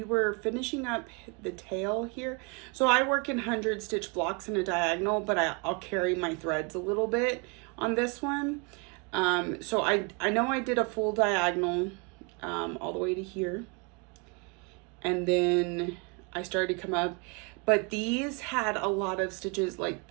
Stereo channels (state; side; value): quieter; left; 31.6 dB